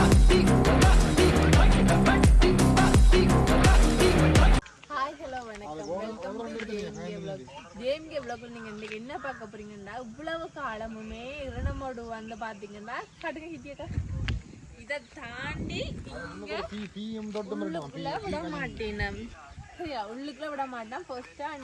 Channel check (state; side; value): identical; both; correlation 1.00